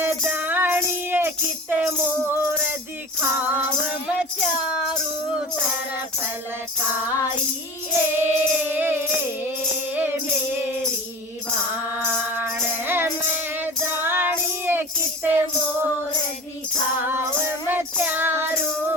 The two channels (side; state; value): both; normal; correlation 0.35